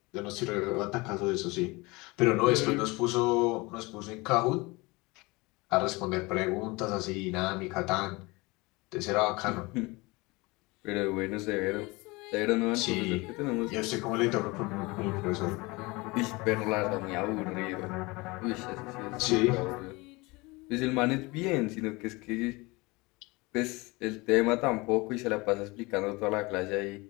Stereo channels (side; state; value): right; quieter; 24.3 dB